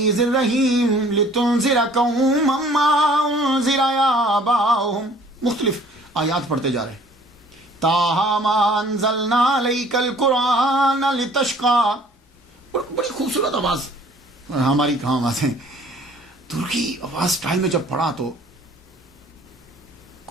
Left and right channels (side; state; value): both; normal; correlation 0.54